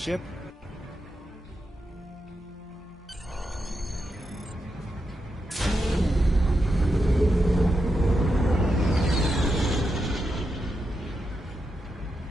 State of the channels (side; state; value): both; normal; correlation 0.86